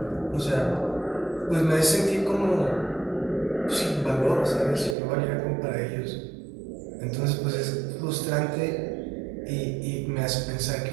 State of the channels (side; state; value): left; drops out; at 5.0 s